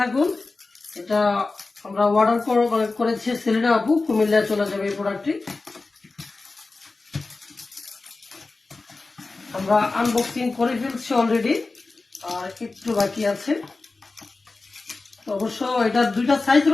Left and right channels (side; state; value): right; quieter; 3.6 dB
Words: থাকুন। এটা আমরা অর্ডার করেছি সেলিনা আপু, কুমিল্লায় চলে যাবে এই প্রোডাক্টটি। আমরা আনবক্সিং করে ফেলছি অলরেডি, আর একটু বাকি আছে। তো অবশ্য এটার দুইটা সাইজ